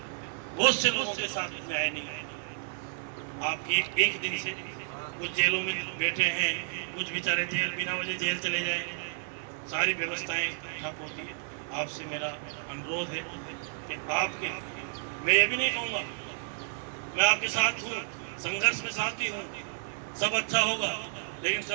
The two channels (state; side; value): silent; left; 57 dB below the other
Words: बहुत से लोगों के साथ न्याय नहीं है। आप एक दिन से कुछ जेलों में बैठे हैं, कुछ बेचारे जेल बिना वजह जेल चले जाए, सारी व्यवस्थाएं ठप होती है। आपसे मेरा अनुरोध है कि आपके, मैं ये भी नहीं कहूँगा, मैं आपके साथ हूँ, संघर्ष में साथी हूँ, सब अच्छा होगा। लेकिन